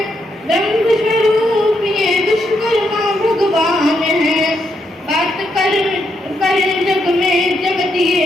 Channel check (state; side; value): normal; both; correlation 0.79